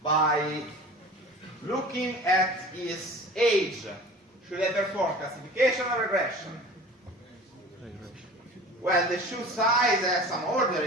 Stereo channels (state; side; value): normal; both; correlation 0.40